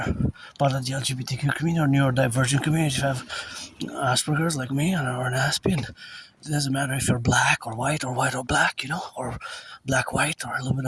part of the LGBTQ community or neurodivergent community, if you have Asperger's like me or an Aspie, and it doesn't matter if you're black or white or black, you know, or black-white or a little bit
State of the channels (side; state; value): both; identical; correlation 1.00